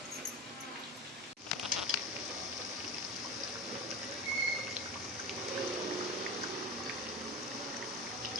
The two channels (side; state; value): both; normal; correlation 0.28